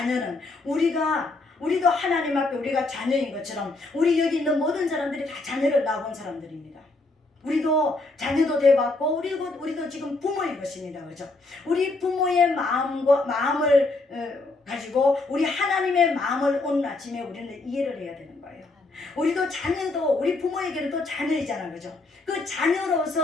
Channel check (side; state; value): right; quieter; 3.3 dB